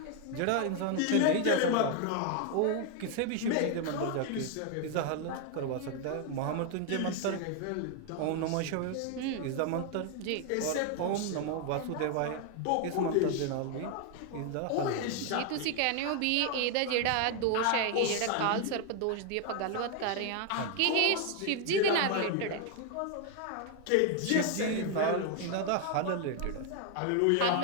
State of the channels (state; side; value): different; both; correlation 0.01